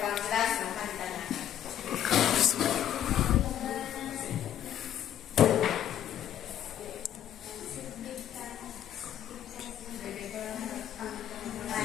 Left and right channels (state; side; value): quieter; right; 10.9 dB